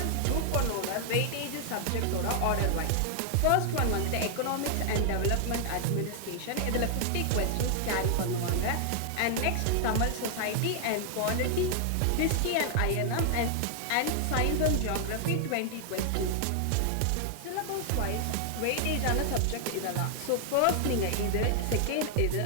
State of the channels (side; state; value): both; different; correlation 0.00